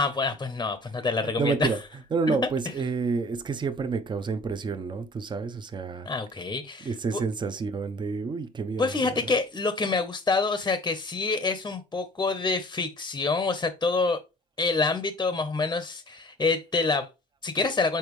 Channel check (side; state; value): both; normal; correlation 0.48